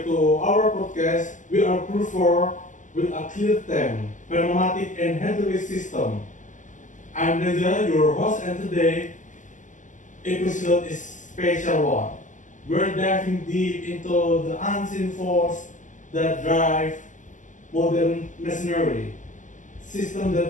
to our podcast. We are proof for with a clear theme, Pneumatic and hydraulic system. I'm Reza, your host, and today episode is special one. We're diving deep into the unseen force that drive modern machinery, system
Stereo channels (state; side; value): late; right; 0.37 ms